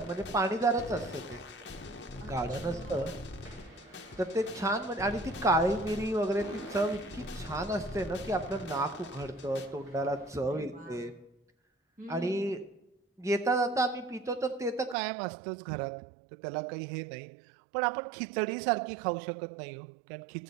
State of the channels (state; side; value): drops out; left; at 15.0 s